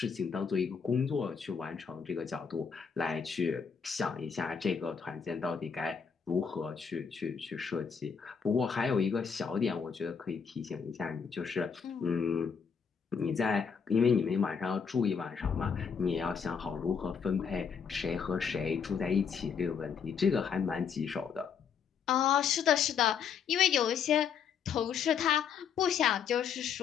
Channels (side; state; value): right; quieter; 6.6 dB